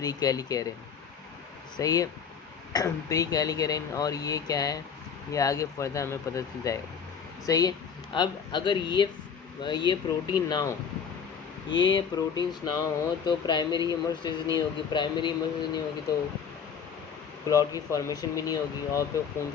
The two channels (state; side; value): quieter; right; 6.9 dB